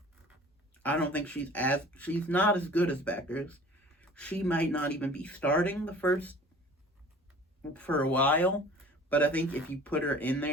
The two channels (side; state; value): both; normal; correlation 0.46